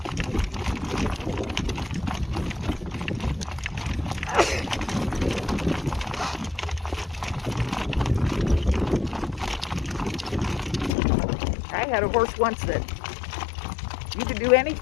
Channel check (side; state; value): right; drops out; at 10.9 s